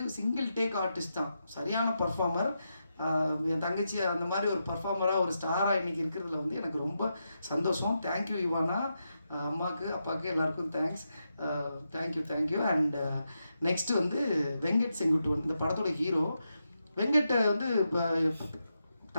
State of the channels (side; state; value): both; inverted; correlation -0.86